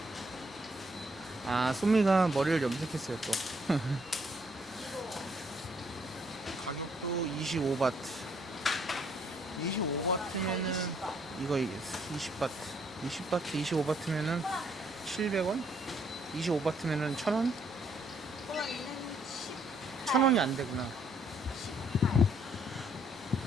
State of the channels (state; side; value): normal; both; correlation 0.69